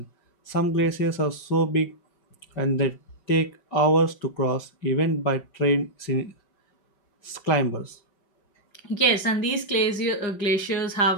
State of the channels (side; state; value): right; late; 5.4 ms